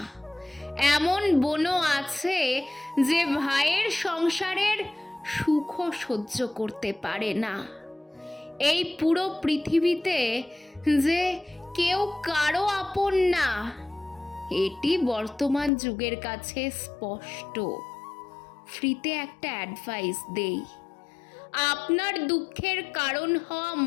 এমন বোনও আছে যে ভাইয়ের সংসারের সুখও সহ্য করতে পারে না। এই পুরো পৃথিবীতে যে কেউ কারো আপন না, এটি বর্তমান যুগের কাছে স্পষ্ট। ফ্রিতে একটা অ্যাডভাইস দেই, আপনার দুঃখের কারণ হওয়া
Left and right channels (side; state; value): right; drops out; at 15.7 s